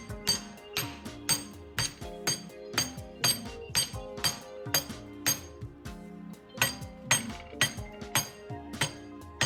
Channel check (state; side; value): identical; both; correlation 1.00